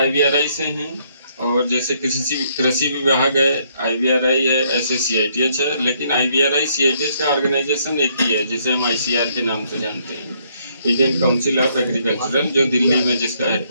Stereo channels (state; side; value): inverted; both; correlation -0.70